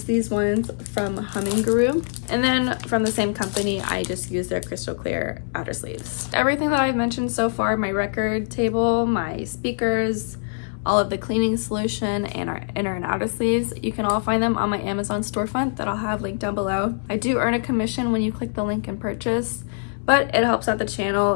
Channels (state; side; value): silent; right; 63 dB below the other